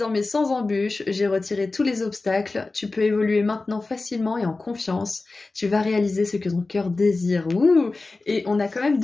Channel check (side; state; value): right; quieter; 3.5 dB